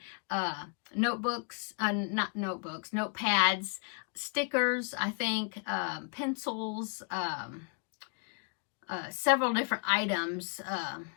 notebooks, not notebooks, notepads, stickers, I think, pencils, several different items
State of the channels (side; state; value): right; quieter; 38.1 dB